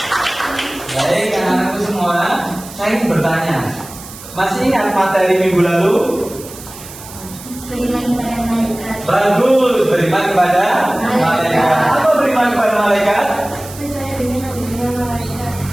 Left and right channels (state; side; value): noise; right; hiss, 16 dB below the sound